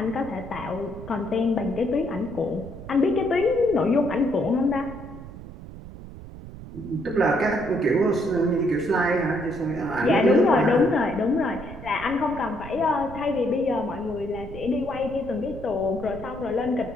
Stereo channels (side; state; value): right; noise; rumble, 14 dB below the sound